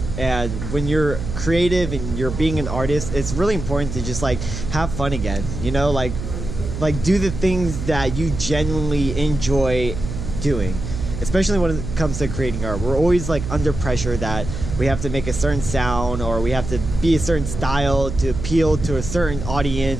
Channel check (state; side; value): noise; right; hum, 6 dB below the sound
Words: And when you're creative and you're being an artist, it's really important to just like have fun again, you know, like do the things that you genuinely enjoy doing, especially when it comes to creating art. We're always like under pressure that we have to make a certain sound or we have to be a certain style to appeal to a certain